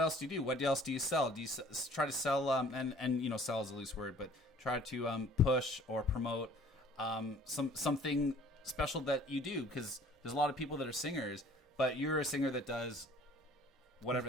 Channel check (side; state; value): both; normal; correlation 0.53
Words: else do you do? What else do you sell? Do you try to sell and sell is a loose word, but try to push or promote something special that you do? Because there's a lot of people that are singers, but you're a singer that does whatever